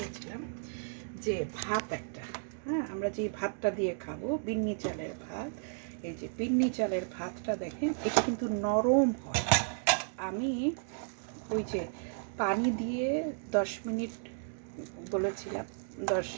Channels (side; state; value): left; silent; digital silence